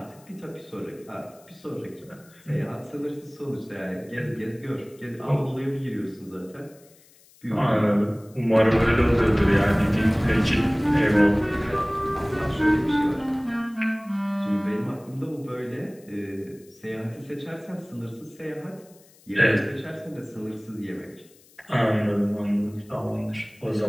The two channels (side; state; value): left; noise; hiss, 27 dB below the sound